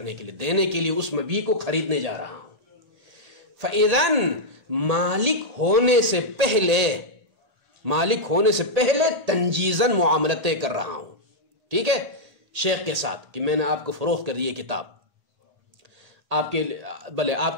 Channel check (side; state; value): left; late; 1.8 ms